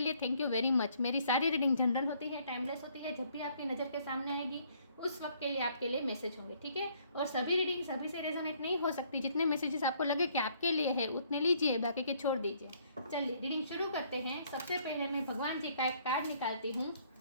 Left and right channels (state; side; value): inverted; both; correlation -0.64